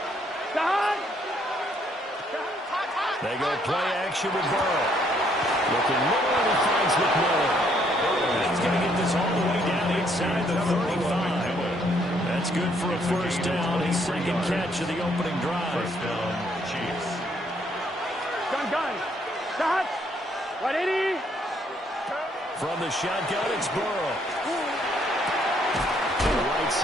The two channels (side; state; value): both; normal; correlation 0.69